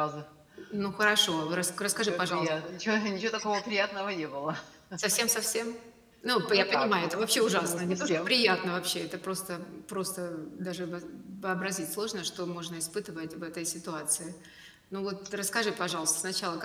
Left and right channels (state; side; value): identical; both; correlation 1.00